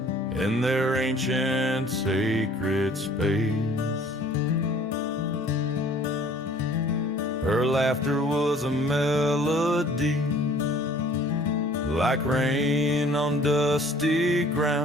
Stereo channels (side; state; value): both; normal; correlation 0.54